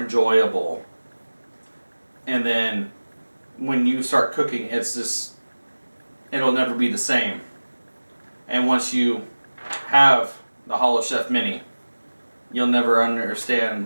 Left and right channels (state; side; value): inverted; both; correlation -1.00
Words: And then when you start cooking, it's just, it'll never be the same. And once you have the HoloChef Mini, you'll never